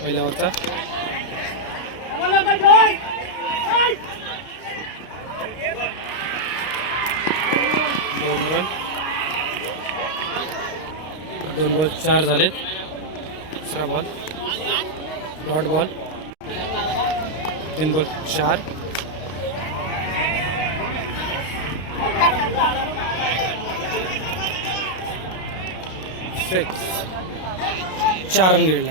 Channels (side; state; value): right; late; 32 ms